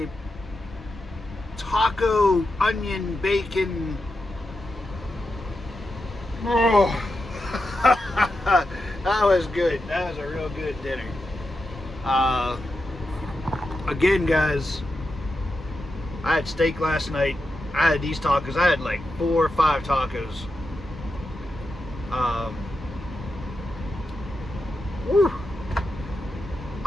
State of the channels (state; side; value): normal; both; correlation 0.88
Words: taco, onion, bacon. Oh. That was good. That was a real good dinner. Again guys, I had steak last night. I had these tacos. I had like 4 or 5 tacos. Whew.